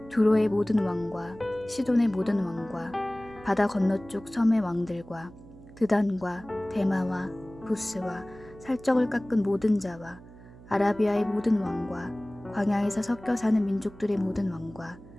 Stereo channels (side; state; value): right; noise; hum, 20 dB below the sound